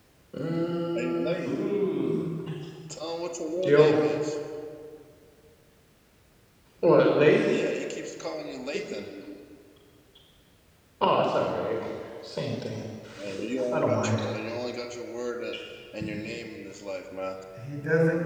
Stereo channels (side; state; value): both; identical; correlation 1.00